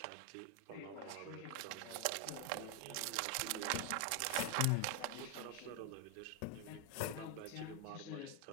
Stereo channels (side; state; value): both; different; correlation 0.01